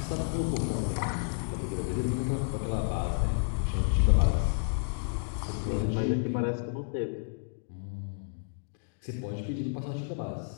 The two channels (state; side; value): silent; right; digital silence